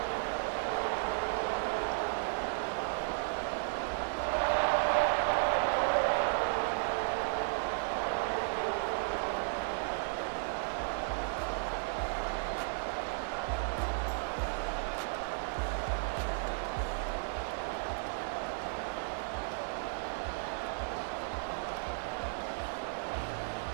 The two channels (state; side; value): silent; left; digital silence